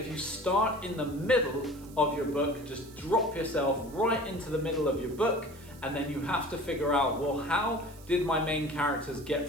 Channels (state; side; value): noise; right; hiss, 22 dB below the sound